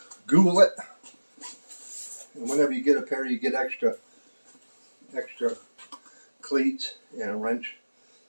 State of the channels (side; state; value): both; inverted; correlation -1.00